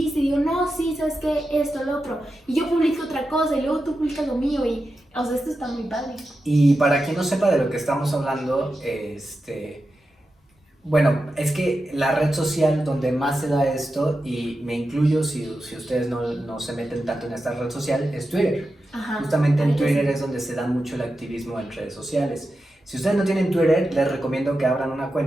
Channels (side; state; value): both; normal; correlation 0.90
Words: y digo, no, sí, ¿sabes qué? Esto, lo otro. Y yo publico otra cosa y luego tú publicas lo mío y... O sea, esto está muy padre. Y para quien no sepa de lo que estamos hablando, bueno, es que la red social donde más se da esto, y me incluyo si ustedes no se meten tanto en esta red social, es Twitter. Justamente en Twitter es donde se da mucho el activismo en redes sociales. Si ustedes no tienen Twitter, les recomiendo que abran una